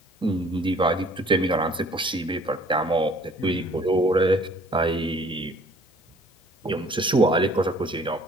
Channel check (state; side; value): normal; both; correlation 0.54